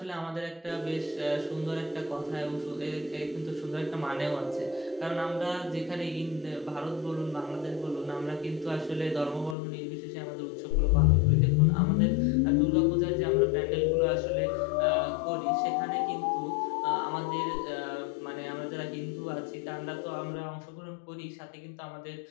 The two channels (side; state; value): right; drops out; at 9.6 s